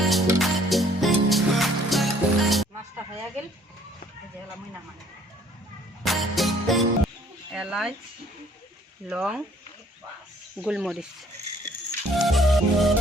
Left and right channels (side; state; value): both; normal; correlation 0.60